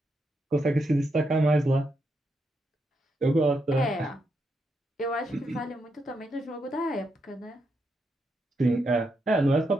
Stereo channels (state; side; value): normal; both; correlation 0.82